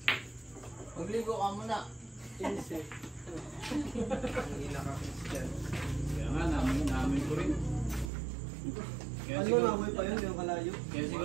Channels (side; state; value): left; drops out; at 8.1 s